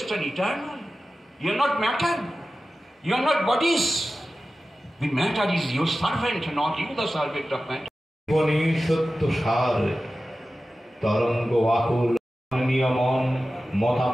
and eternal. You are not matter. You are not bodies. The matter is your servant, not you the servant of matter. জীবনী সত্য সার তরঙ্গ আকুল নিয়মন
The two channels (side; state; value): both; normal; correlation 0.95